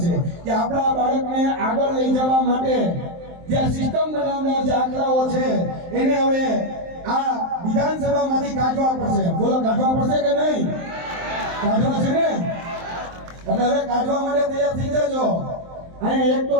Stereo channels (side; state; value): left; late; 23 ms